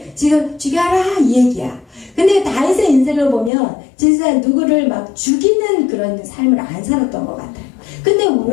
지금 죽여라 이 얘기야. 근데 다윗의 인생을 보면 진짜 누구를 막 죽이는 그런 삶을 안 살았던 것 같아요. 근데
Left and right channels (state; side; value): drops out; right; at 3.5 s